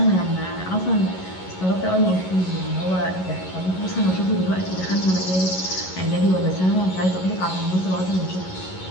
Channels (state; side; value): late; right; 11 ms